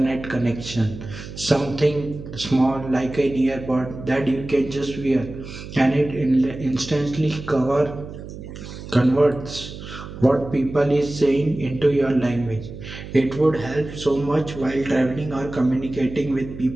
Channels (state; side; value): noise; right; hum, 12 dB below the sound